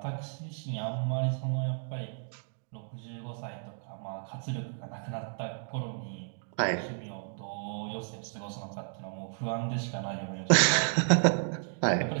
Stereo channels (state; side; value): silent; left; digital silence